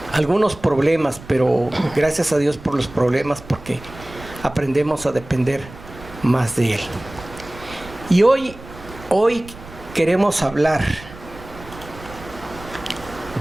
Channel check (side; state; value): right; noise; rumble, 17 dB below the sound